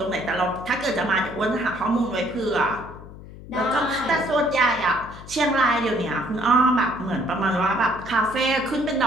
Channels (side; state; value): left; noise; hum, 16 dB below the sound